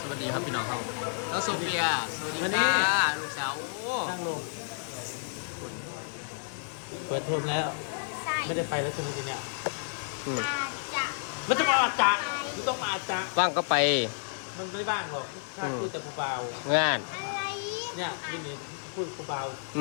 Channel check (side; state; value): right; silent; digital silence